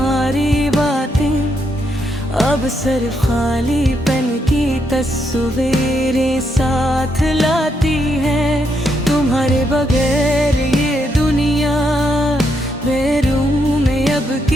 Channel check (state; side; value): normal; both; correlation 0.78